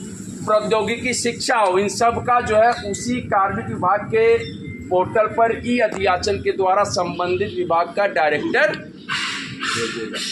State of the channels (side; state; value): both; identical; correlation 1.00